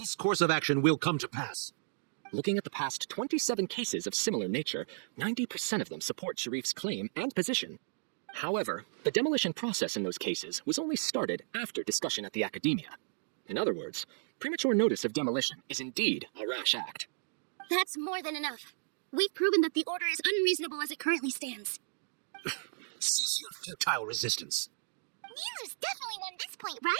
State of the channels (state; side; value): silent; left; digital silence